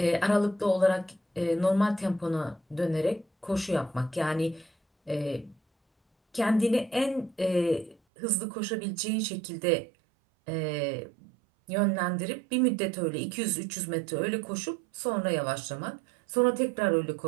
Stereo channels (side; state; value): left; drops out; at 8.0 s